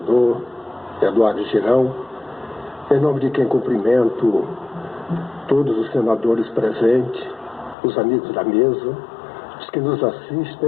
Eduardo Girão, em nome de quem cumprimento todos os senadores presentes, os amigos da mesa, os que nos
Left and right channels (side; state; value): right; drops out; at 7.8 s